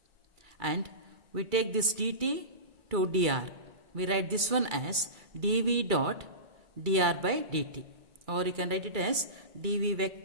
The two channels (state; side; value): late; left; 2.3 ms